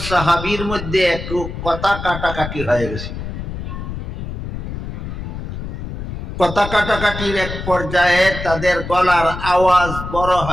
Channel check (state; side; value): noise; left; rumble, 7 dB below the sound